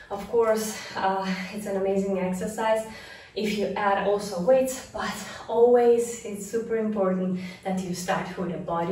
Of course, it's an amazing exercise if you add also weights, but always it's super important that you start with a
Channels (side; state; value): both; identical; correlation 1.00